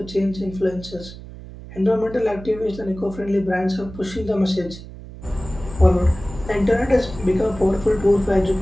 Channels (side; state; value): right; noise; hum, 15 dB below the sound